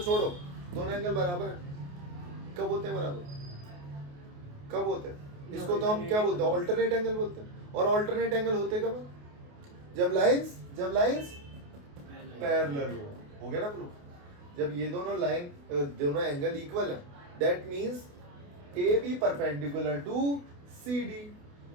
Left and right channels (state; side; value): late; left; 28 ms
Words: दोनों एंगल बराबर है। कब होते हैं बराबर? कब होते हैं? इसको तो हम क्या बोलते हैं? ऑल्टरनेट एंगल बोलते हैं। और ऑल्टरनेट एंगल होते कब? जब लाइंस पैरेलल हो गया ना प्रूफ? जब ये दोनों एंगल इक्वल है, that means A B perpendicular to C D,